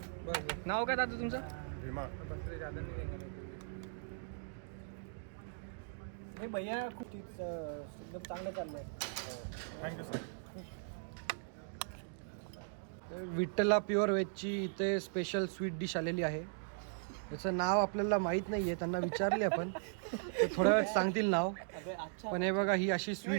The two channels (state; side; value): silent; left; digital silence